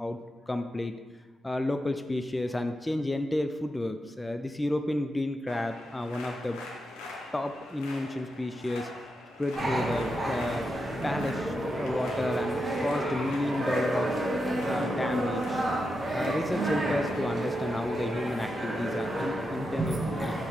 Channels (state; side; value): normal; both; correlation 0.87